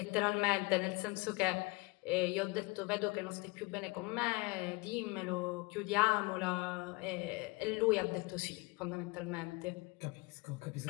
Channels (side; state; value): right; quieter; 25.9 dB